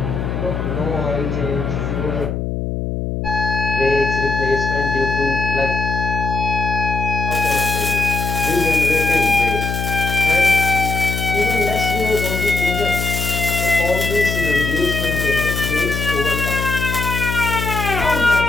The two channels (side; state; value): left; noise; hum, 3 dB below the sound